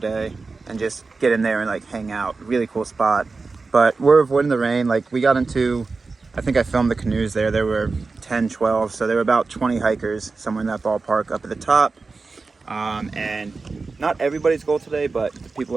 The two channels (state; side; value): quieter; left; 4.1 dB